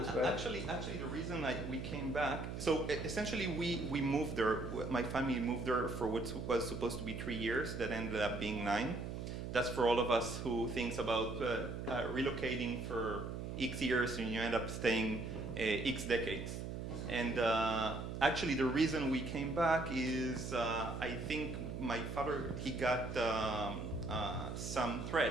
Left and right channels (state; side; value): noise; right; hum, 5 dB below the sound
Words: right? Actually, the reason we came back... So essentially we moved there, my family moved there for what was supposed to be 3 years, that ended up being 9. That's for all of us who thinks about relocating for X years and you end up staying X decades. And actually the reason we came back is I think my father, he got some